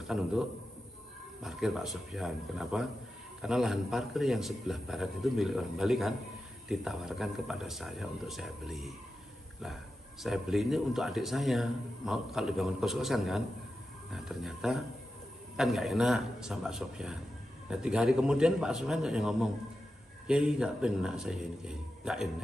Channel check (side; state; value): both; normal; correlation 0.91